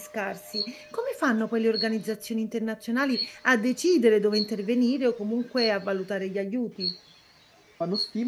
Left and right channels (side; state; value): both; identical; correlation 1.00